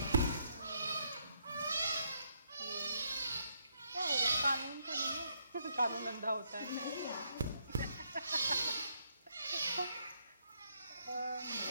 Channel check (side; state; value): both; inverted; correlation -0.74